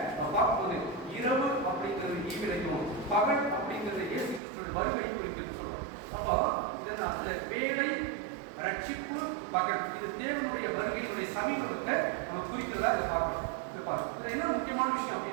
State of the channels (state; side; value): drops out; left; at 4.4 s